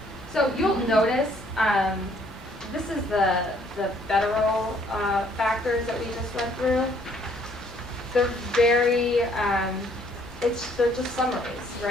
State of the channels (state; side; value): normal; both; correlation 0.63